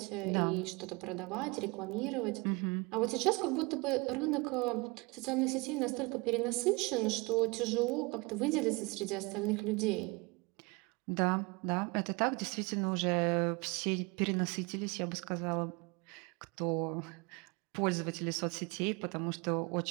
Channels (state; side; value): quieter; left; 26.9 dB